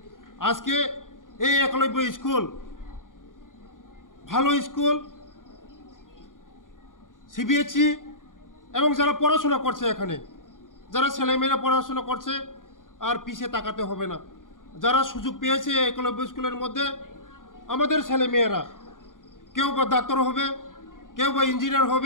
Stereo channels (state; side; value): late; right; 0.89 ms